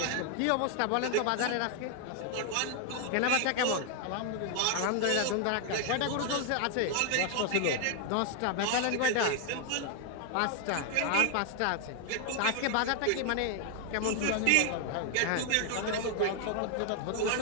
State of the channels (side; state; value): both; different; correlation 0.00